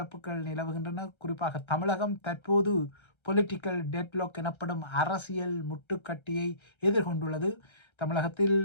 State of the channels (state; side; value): late; right; 1.3 ms